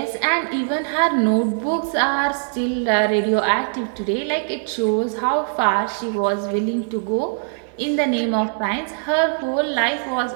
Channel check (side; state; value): left; silent; digital silence